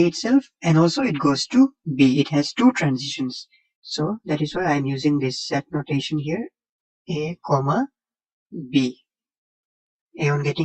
itself, and also it goes to B. It has two transitions. So that is why I'm using this set notation here, A, comma, B. A on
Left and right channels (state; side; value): identical; both; correlation 1.00